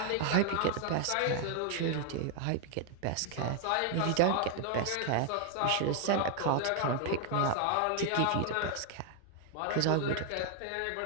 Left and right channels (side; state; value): both; different; correlation 0.00